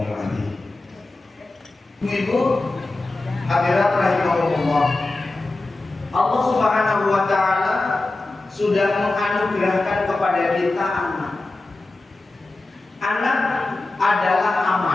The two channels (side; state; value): right; quieter; 3.1 dB